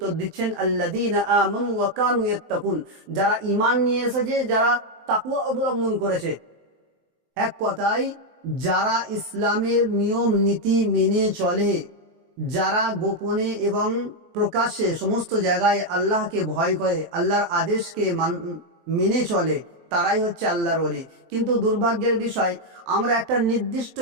দিচ্ছেন, আল্লাযীনা আমানু ওয়া কানু ইয়াত্তাকুন, যারা ঈমান নিয়ে এসেছে, যারা তাকওয়া অবলম্বন করেছে। এক কথায় যারা ইসলামের নিয়ম নীতি মেনে চলে, যারা গোপনে এবং প্রকাশ্যে সমস্ত জায়গায় আল্লাহকে ভয় করে, আল্লাহর আদেশকে মেনে চলে, তারাই হচ্ছে আল্লাহর ওলি। কিন্তু দুর্ভাগ্যের বিষয়, আমরা একটা নির্দিষ্ট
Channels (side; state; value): left; late; 23 ms